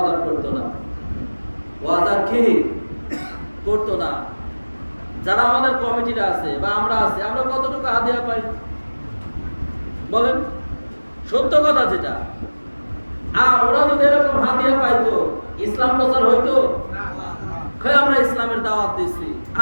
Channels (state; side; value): inverted; both; correlation -1.00